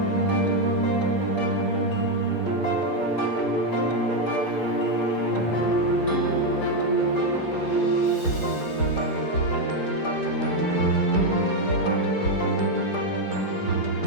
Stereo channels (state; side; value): late; right; 5.2 ms